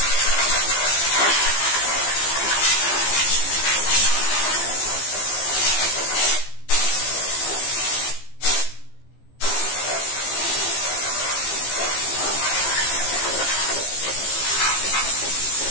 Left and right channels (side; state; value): right; late; 15 ms